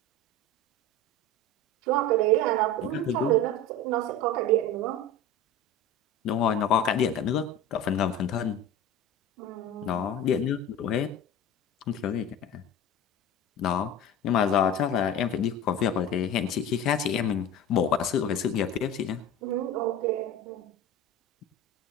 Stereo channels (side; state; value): both; normal; correlation 0.32